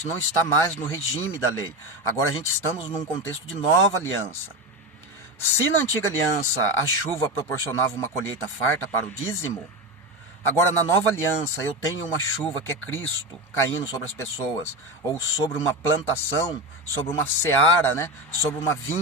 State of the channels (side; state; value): both; normal; correlation 0.19